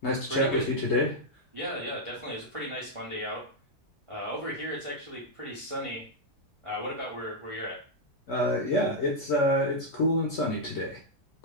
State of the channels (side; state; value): both; normal; correlation -0.03